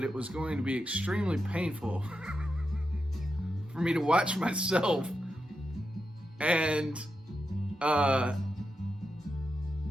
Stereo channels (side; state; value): both; normal; correlation 0.87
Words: it was going to be extremely painful for me to watch myself, and